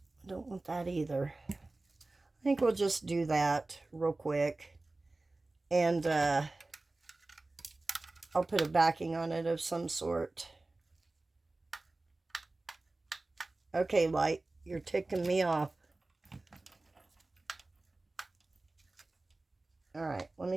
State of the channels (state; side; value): quieter; left; 3.1 dB